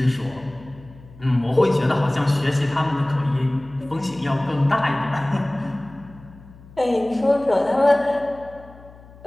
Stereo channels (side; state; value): left; noise; hum, 21 dB below the sound